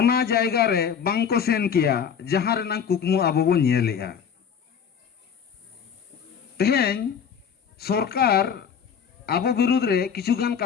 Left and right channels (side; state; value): right; quieter; 7.3 dB